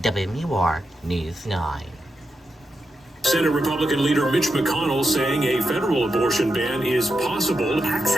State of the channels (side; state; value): both; normal; correlation 0.87